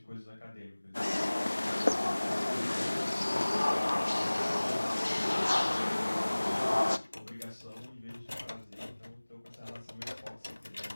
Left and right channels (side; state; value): both; inverted; correlation -1.00